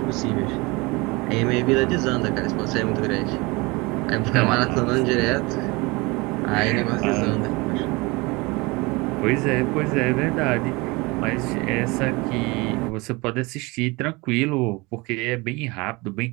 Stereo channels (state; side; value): quieter; left; 25.0 dB